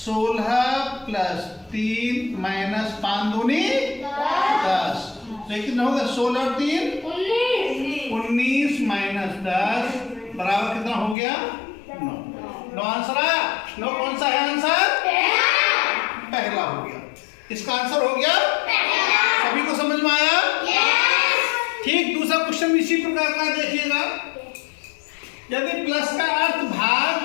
प्लस 3 माइनस 5 दूनी 10। लेकिन होगा 16 और 3 19 माइनस 10 बराबर कितना हो गया 9। 9 आंसर आया। 9 कौन सा है आंसर, पहला हो गया। इसका आंसर हो गया पहला। सभी को समझ में आया? ठीक, दूसरा क्वेश्चन इसी प्रकार का देखिएगा। यदि प्लस का अर्थ भाग,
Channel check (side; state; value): right; drops out; at 11.2 s